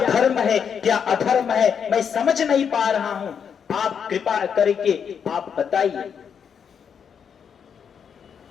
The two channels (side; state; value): right; quieter; 7.3 dB